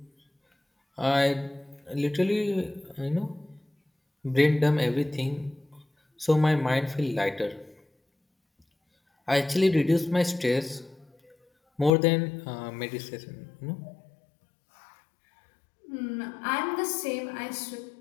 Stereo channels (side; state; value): right; drops out; at 11.9 s